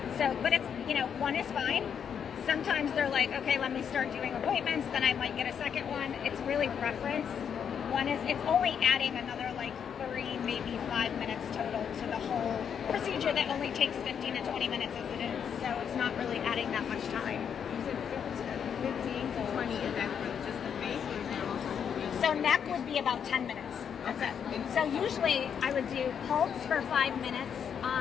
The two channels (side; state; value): right; quieter; 7.7 dB